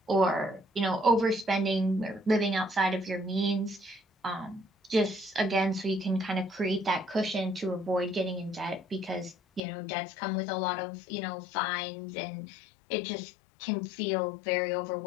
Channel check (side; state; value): right; drops out; at 9.6 s